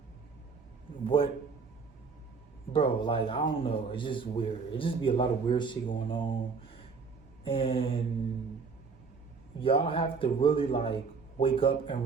what, bro, like, I don't know. It's just weird. It just be a lot of weird shit going on. And y'all have to really like wake up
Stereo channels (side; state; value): left; quieter; 5.1 dB